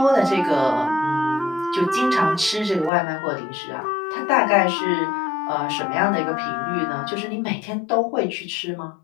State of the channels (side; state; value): right; drops out; at 2.9 s